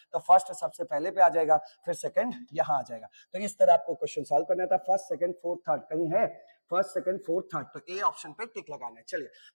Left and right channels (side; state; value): both; inverted; correlation -1.00